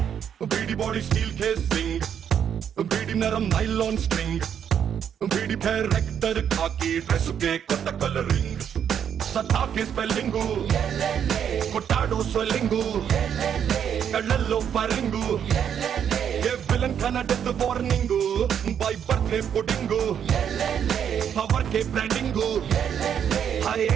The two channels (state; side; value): quieter; left; 8.6 dB